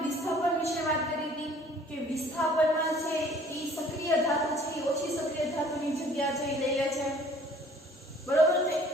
વિસ્થાપન વિશે વાત કરી હતી કે વિસ્થાપનમાં છે એ સક્રિય ધાતુ છે એ ઓછી સક્રિય ધાતુની જગ્યા છે એ લઈ લે છે, બરોબર છે.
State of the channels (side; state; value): both; normal; correlation 0.54